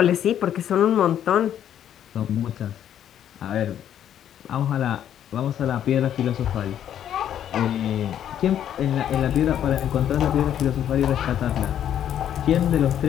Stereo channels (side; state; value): right; quieter; 10.2 dB